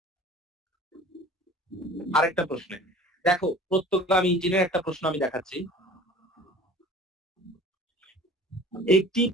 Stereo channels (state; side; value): normal; both; correlation 0.45